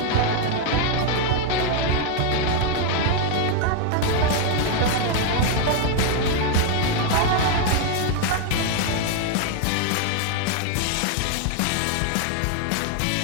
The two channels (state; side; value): different; both; correlation 0.01